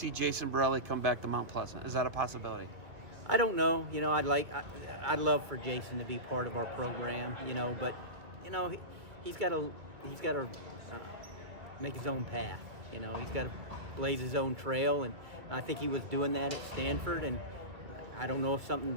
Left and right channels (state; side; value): late; left; 2.0 ms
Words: Jason Borrelli come back to Mount Pleasant? Is that a possibility? I don't know. I'd love for Jason to be part of our program. But he's got to make his own path. He's got to blaze his own trail, and I think he was doing that at Stanford. And I don't know if